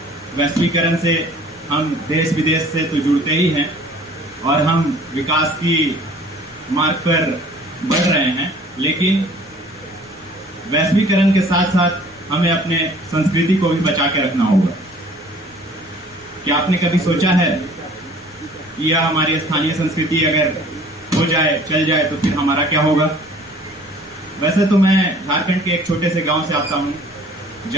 वैश्वीकरण से हम देश विदेश से तो जुड़ते ही हैं और हम विकास की मार्ग पर बढ़ रहे हैं, लेकिन वैश्वीकरण के साथ साथ हमें अपने संस्कृति को भी बचा के रखना होगा। क्या आपने कभी सोचा है कि यह हमारी स्थानीय संस्कृति अगर हो जाए, चल जाए, तो फिर हमारा क्या होगा? वैसे तो मैं झारखंड के एक छोटे से गांव से आता हूं,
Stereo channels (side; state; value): left; noise; rumble, 29 dB below the sound